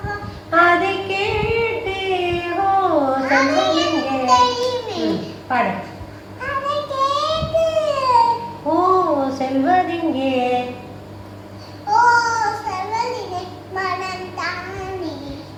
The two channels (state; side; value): identical; both; correlation 1.00